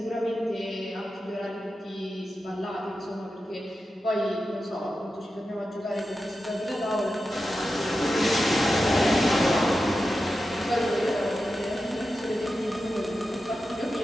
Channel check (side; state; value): both; normal; correlation 0.91